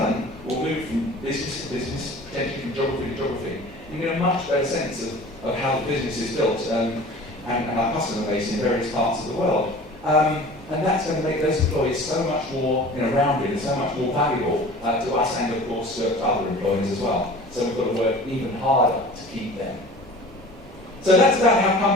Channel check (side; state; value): both; normal; correlation 0.42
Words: will move from business to business, potentially from geography to geography. You get a much better sense of how the business is built and our customer base in various parts of the world. And that's going to make those employees so much more, you know, rounded and so much more valuable to us and, of course, to other employees as well. So we've got to work even harder to keep them. So that's about how